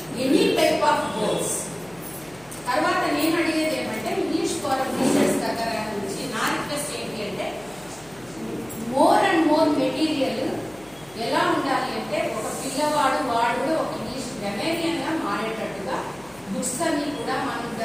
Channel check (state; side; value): noise; left; hum, 25 dB below the sound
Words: any type of goals. తర్వాత నేను అడిగేది ఏమంటే ఇంగ్లీష్ ఫోరం టీచర్స్ దగ్గర నుంచి నా రిక్వెస్ట్ ఏంటి అంటే మోర్ అండ్ మోర్ మెటీరియల్ ఎలా ఉండాలి అంటే ఒక పిల్లవాడు వాడు కూడా ఒక ఇంగ్లీష్ గ్రామర్ బుక్స్ అన్ని కూడా మనం